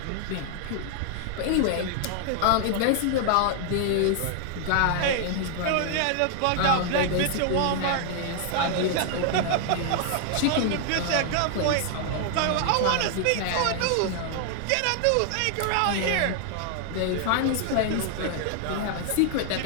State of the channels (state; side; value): different; both; correlation 0.00